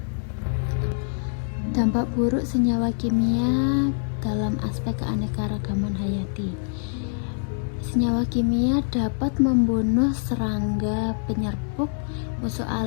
Dampak buruk senyawa kimia dalam aspek keanekaragaman hayati. Senyawa kimia dapat membunuh serangga, penyerbuk, musuh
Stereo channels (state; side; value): silent; right; 62 dB below the other